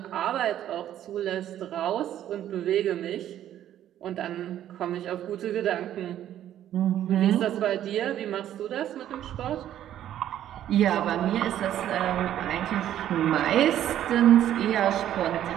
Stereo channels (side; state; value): left; quieter; 11.5 dB